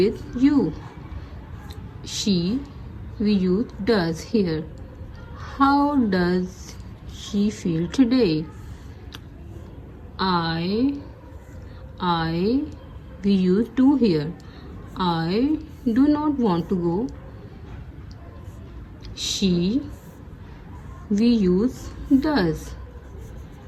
you. She, we use does here. How does she feel today? I, we use do here. I do not want to go. She, we use does.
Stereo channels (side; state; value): both; identical; correlation 1.00